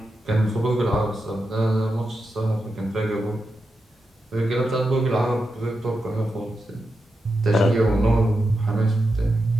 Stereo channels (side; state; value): both; normal; correlation 0.88